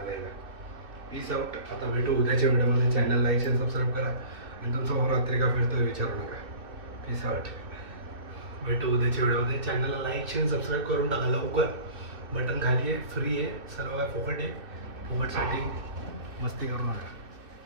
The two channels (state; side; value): late; left; 2.9 ms